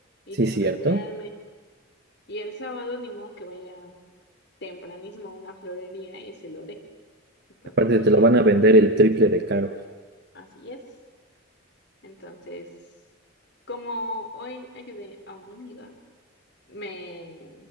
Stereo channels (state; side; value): normal; both; correlation 0.14